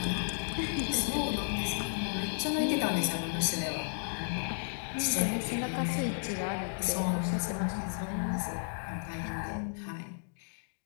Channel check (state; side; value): silent; right; digital silence